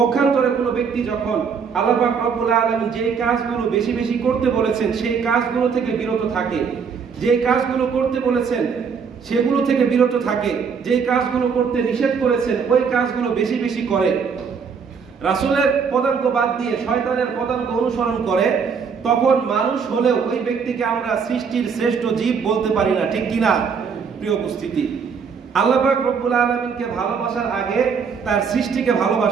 কোনো ব্যক্তি যখন আল্লাহ পাক রব্বুল আলামিন যে কাজগুলো বেশি বেশি করতে বলেছেন সেই কাজগুলো থেকে বিরত থাকে, যে কাজগুলো করতে বলেছেন সেগুলো থেকে বিরত থাকে, যে কাজগুলো করতে নিষেধ করেছেন ওই কাজগুলো বেশি বেশি করে, রাসূলের পদাঙ্ক বাদ দিয়ে শয়তানের পদাঙ্ক অনুসরণ করে, তখন মানুষ হলেও ওই ব্যক্তিকে আমরা সৃষ্টির শ্রেষ্ঠ জীব বলতে পারি না। ঠিক কি না? প্রিয় উপস্থিতি, আল্লাহ পাক রব্বুল আলামিনকে ভালোবাসার আগে তার সৃষ্টিকে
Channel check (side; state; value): left; quieter; 6.1 dB